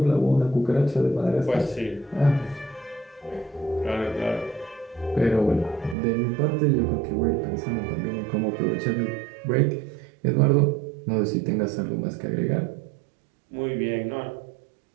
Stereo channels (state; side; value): drops out; left; at 6.0 s